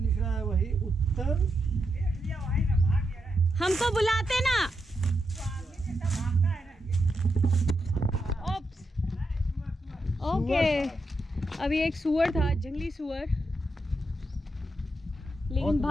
रहा है वही उत्तर। हमको बुलाते ना। ओके, अभी एक सुअर था, जंगली सुअर, लेकिन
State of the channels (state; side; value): normal; both; correlation 0.84